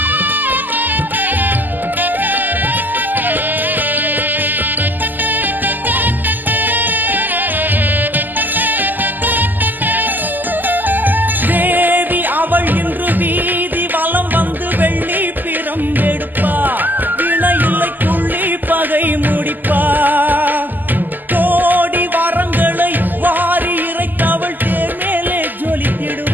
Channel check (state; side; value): late; left; 0.087 ms